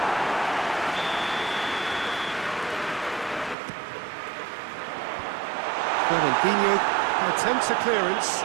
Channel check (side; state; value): left; drops out; at 3.6 s